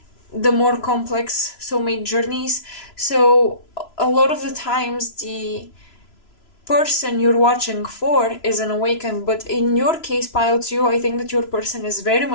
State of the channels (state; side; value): late; right; 3.0 ms